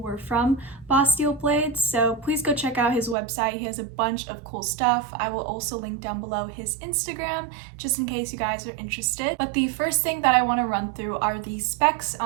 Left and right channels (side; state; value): left; drops out; at 3.2 s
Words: from Boss Steel Blades, so please go check out his website. He has a bunch of cool stuff. I will also link down below his Instagram, just in case you guys are interested. But the first thing that I want to run through are the specs